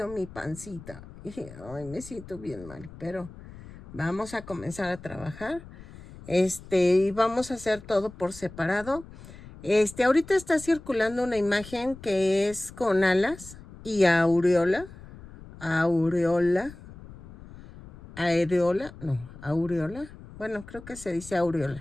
mi pancita. Ay, me siento bien mal, pero vamos a comenzar a trabajar. Y vamos a hacer todo por separado. Ahorita está circulando una imagen que es con alas y aureola. Aureola. Bueno, creo que se dice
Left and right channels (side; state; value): left; noise; rumble, 17 dB below the sound